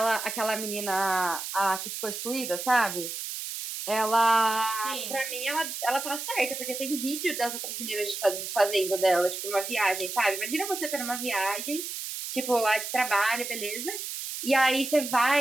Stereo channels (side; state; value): right; noise; hiss, 6 dB below the sound